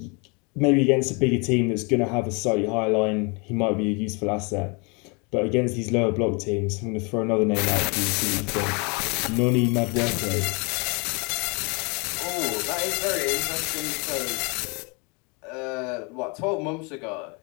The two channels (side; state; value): right; quieter; 31.5 dB